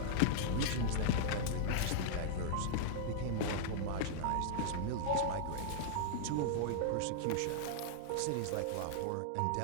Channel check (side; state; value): both; different; correlation -0.01